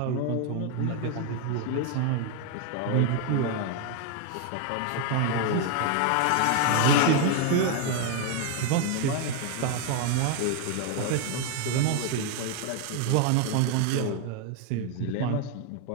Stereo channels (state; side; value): different; both; correlation 0.01